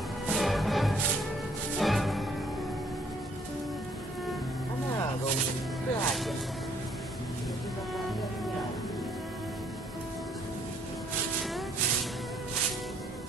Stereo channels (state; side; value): normal; both; correlation 0.65